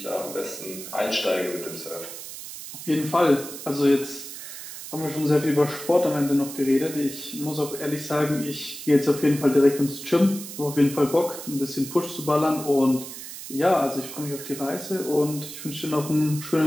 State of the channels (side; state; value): right; noise; hiss, 11 dB below the sound